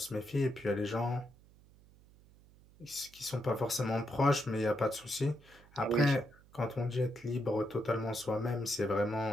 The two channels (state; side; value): noise; right; hum, 25 dB below the sound